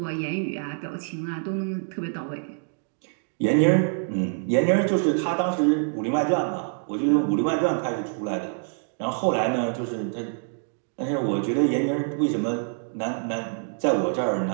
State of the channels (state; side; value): silent; left; 61 dB below the other